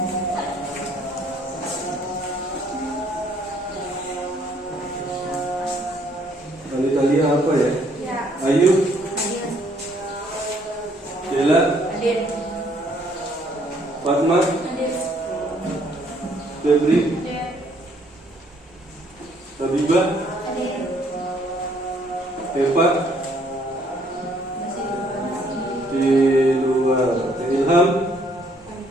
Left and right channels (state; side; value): normal; both; correlation 0.65